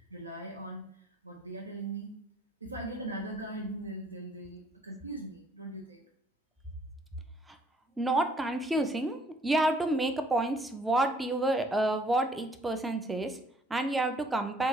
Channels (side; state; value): both; normal; correlation 0.62